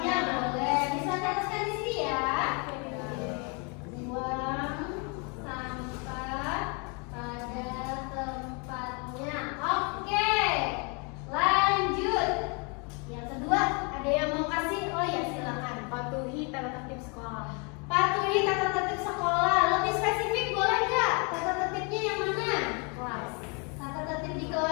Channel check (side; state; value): right; quieter; 33.8 dB